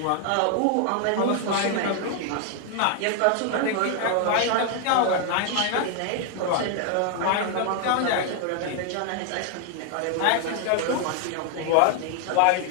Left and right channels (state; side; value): different; both; correlation 0.00